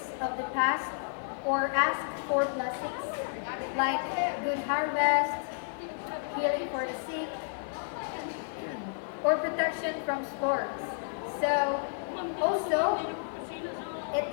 of the past or asks for blessings like good harvest, healing for the sick, or protection from storms. So also it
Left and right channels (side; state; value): right; silent; digital silence